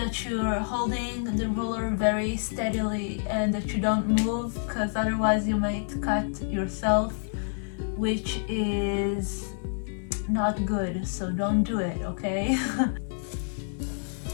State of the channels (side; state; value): right; silent; 59 dB below the other